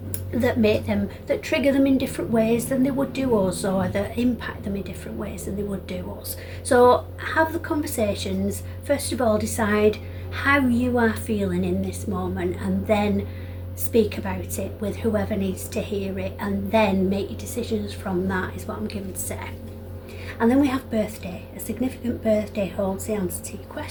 that trigger them in different ways than they would do us, or that impact them in different ways than they would do us. So have the conversations. First of all, decide how you are feeling in this moment, and then speak about it with whoever needs to hear it, and then make your decisions from that, is what I'm given to say. And then we have birthday. A significant birthday holds the answer to your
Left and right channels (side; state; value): both; identical; correlation 1.00